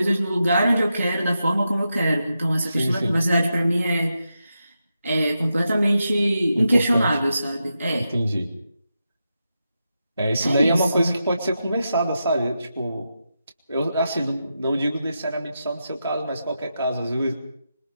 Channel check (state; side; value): inverted; both; correlation -0.87